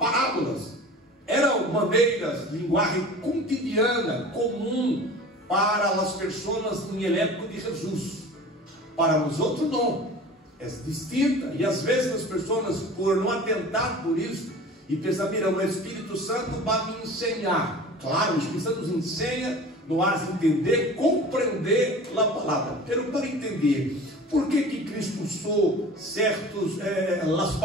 Eram maneiras, linguagem cotidiana, comum para as pessoas em época de Jesus. Para nós outros não, é distinta. E às vezes as pessoas, por não atentar por isso, e pensam: mira, o Espírito Santo vai me ensinar. Claro, o Espírito Santo nos ensina, nos faz entender, compreender a palavra. Pero para entender por que Cristo usou as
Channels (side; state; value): both; normal; correlation 0.39